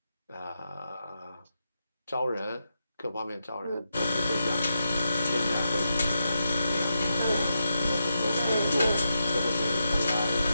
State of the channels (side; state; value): both; inverted; correlation -0.86